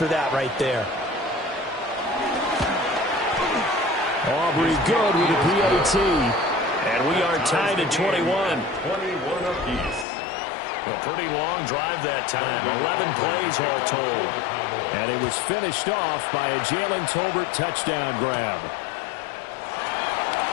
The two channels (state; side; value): drops out; right; at 10.1 s